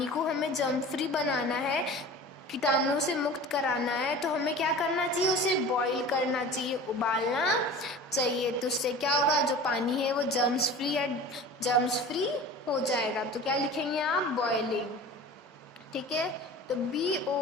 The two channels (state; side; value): normal; both; correlation 0.38